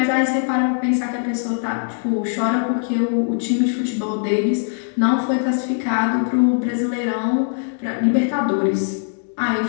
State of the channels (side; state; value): right; silent; digital silence